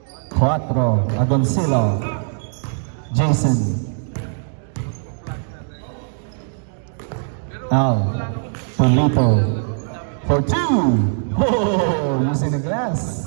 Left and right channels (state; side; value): silent; left; digital silence